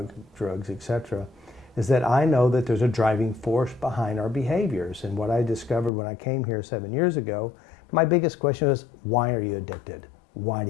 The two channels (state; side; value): drops out; right; at 5.9 s